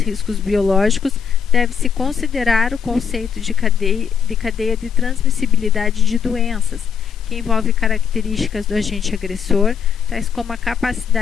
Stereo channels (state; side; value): quieter; right; 7.2 dB